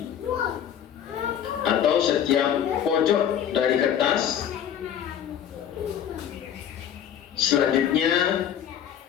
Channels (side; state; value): right; quieter; 9.5 dB